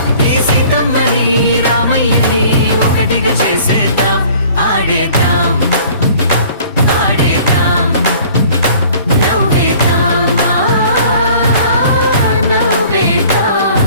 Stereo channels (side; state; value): both; inverted; correlation -0.51